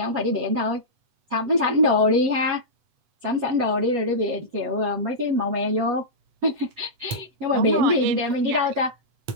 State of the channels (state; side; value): late; left; 8.1 ms